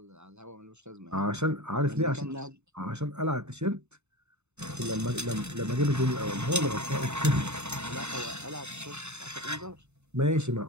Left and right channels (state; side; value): late; left; 0.82 ms